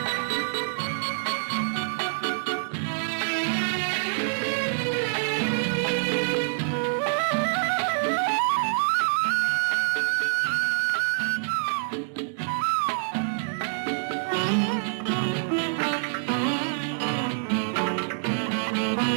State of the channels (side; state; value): left; silent; digital silence